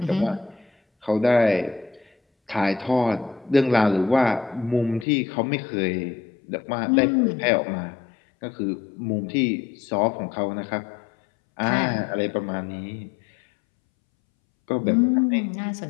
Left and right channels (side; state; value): right; drops out; at 5.1 s